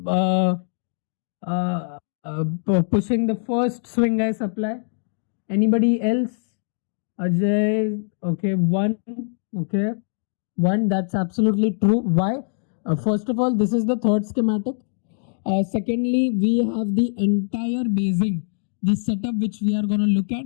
pushing the first swing high supply. Anybody else? Ajay, okay, one, okay. One, that's absolutely true. Why? First of all, this is the third schematic. Secondly, we have the entire basing, the setup which we are going to look at.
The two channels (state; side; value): silent; right; digital silence